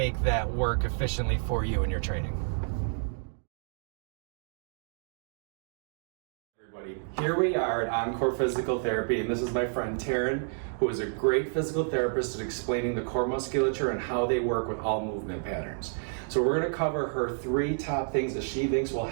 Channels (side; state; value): left; silent; 58 dB below the other